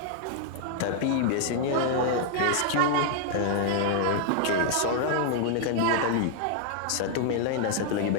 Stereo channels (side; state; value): both; different; correlation 0.00